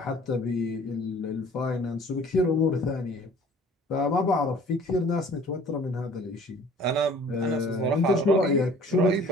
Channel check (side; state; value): both; normal; correlation 0.50